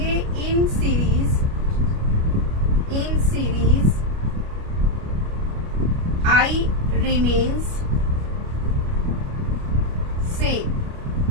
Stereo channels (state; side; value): late; left; 29 ms